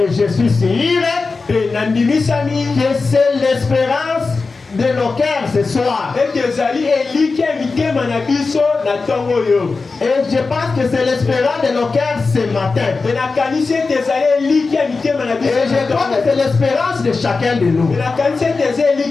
je suis sûr que c'est l'espérance de nos cœurs ce soir. Et je pense que c'est l'espérance de nos cœurs ce matin. Et je crois que c'est l'espérance de chacun de nous. Nous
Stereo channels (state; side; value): quieter; right; 4.1 dB